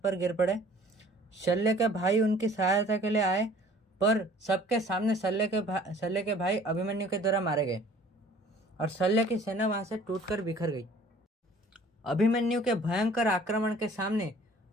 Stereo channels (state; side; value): normal; both; correlation 0.51